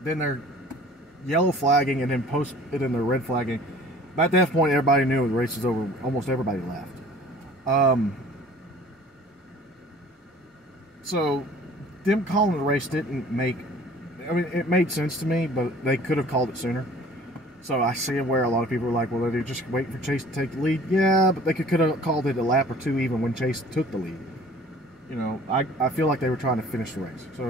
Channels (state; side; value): normal; both; correlation 0.49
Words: then they're yellow flagging and then they're red flagging. But at that point, everybody knew the race was over. Almost everybody left. So them calling the race didn't make, I mean, it made sense to me, but they could have called it sooner. So I see where a lot of people are like, well, they're just waiting for Chase to take the lead. Yeah, but they could have called it a lap or 2 even when Chase took the lead. You know, I feel like they were trying to finish the race, so